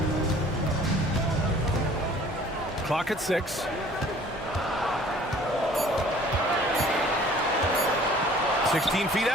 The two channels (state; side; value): normal; both; correlation 0.52